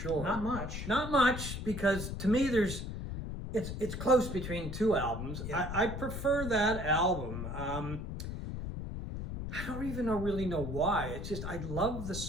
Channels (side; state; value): left; noise; rumble, 6 dB below the sound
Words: Not much. Not much, because to me it's close between two albums. Yeah. I prefer that album. I don't even really know why. It's just I love the